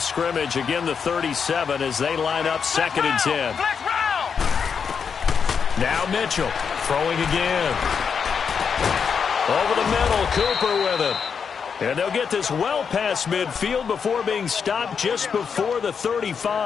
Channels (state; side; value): quieter; right; 6.4 dB